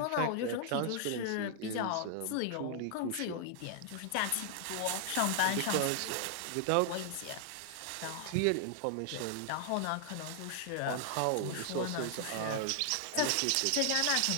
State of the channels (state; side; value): different; both; correlation 0.00